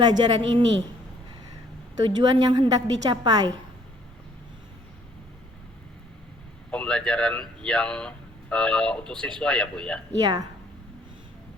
ini? Tujuan yang hendak dicapai. Pembelajaran yang untuk siswa ya Bu ya? Iya.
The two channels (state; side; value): normal; both; correlation 0.62